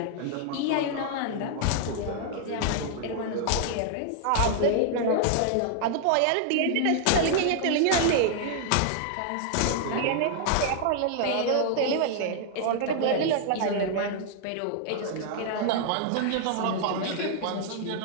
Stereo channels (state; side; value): different; both; correlation -0.01